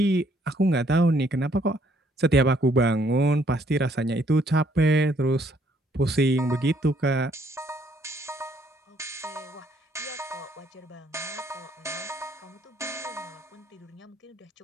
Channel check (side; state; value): both; normal; correlation 0.67